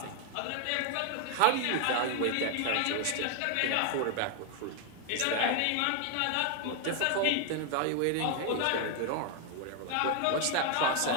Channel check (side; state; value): both; different; correlation 0.00